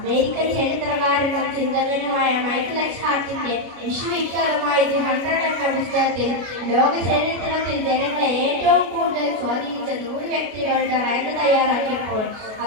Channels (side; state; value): left; late; 33 ms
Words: ചരിത്രകാരനും ചിന്തകനുമായ മൈക്കൽ എച്ച് ഹാർട്ടിന്റെ വിശ്വവിഖ്യാതമായ ദി 100 എന്ന പുസ്തകത്തിൽ ലോക ചരിത്രത്തിൽ ജനങ്ങളെ ഏറ്റവും കൂടുതൽ സ്വാധീനിച്ച 100 വ്യക്തികളുടെ റാങ്ക് തയ്യാറാക്കിയപ്പോൾ